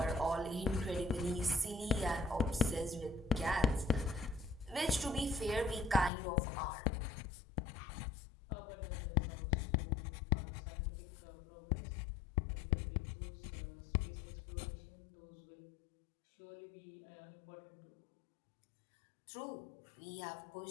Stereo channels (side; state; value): right; drops out; at 6.1 s